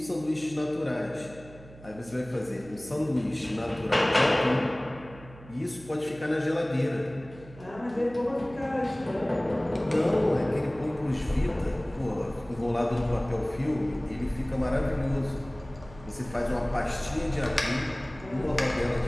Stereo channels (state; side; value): noise; right; hum, 19 dB below the sound